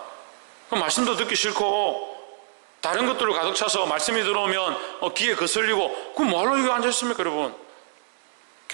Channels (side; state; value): left; silent; digital silence